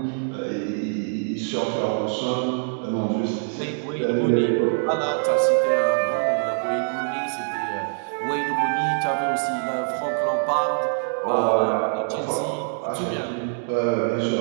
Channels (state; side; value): silent; left; digital silence